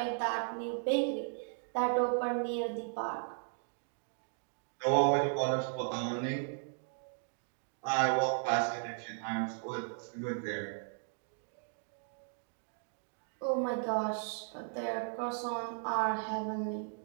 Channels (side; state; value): left; silent; digital silence